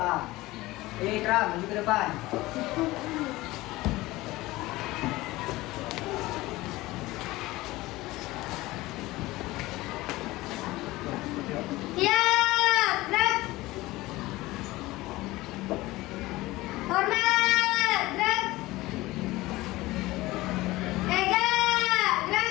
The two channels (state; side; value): quieter; right; 19.1 dB